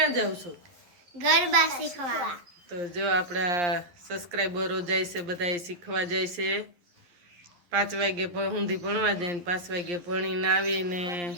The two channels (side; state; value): left; late; 11 ms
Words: जाव छो? गरबा शीखवा। तो जो आपड़ा सब्सक्राइबरो जाय छे बधाय शीखवा जाय छे। 5 वागे सुधी भणवा जाय ने 5 वागे भणीने आवीने